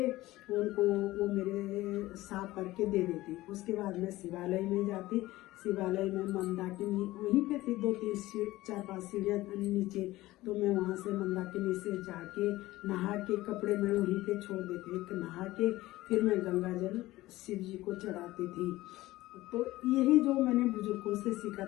उनको वो मेरे साफ करके दे देती। उसके बाद मैं शिवालय में जाती। शिवालय में मंदाकिनी वहीं पे थी, 4-5 सीढ़ियाँ नीचे। तो मैं वहाँ से मंदाकिनी से जाके नहा के कपड़े मैं वहीं पे छोड़ देती, नहा के फिर मैं गंगा जल शिव जी को चढ़ाती थी। तो यही जो मैंने बुजुर्गों से सीखा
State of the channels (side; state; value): right; quieter; 17.5 dB